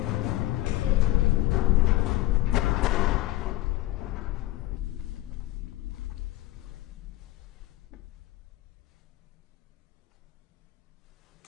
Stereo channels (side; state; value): right; quieter; 16.7 dB